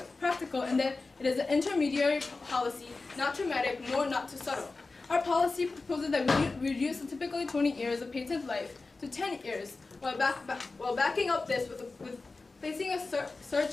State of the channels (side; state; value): right; quieter; 3.7 dB